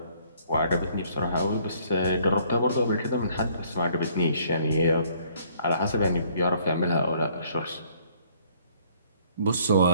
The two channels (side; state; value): both; inverted; correlation -0.62